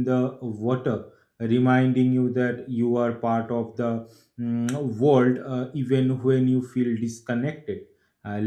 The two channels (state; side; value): identical; both; correlation 1.00